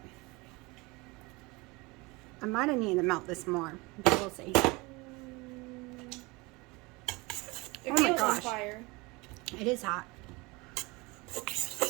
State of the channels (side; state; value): left; quieter; 24.7 dB